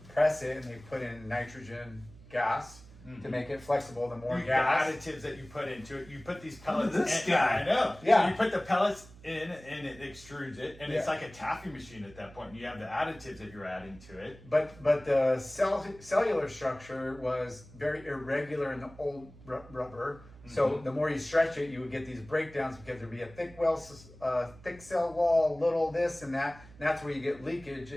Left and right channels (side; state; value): right; noise; hum, 21 dB below the sound